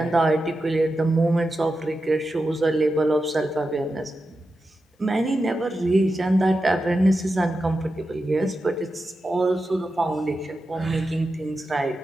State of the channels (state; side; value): normal; both; correlation 0.90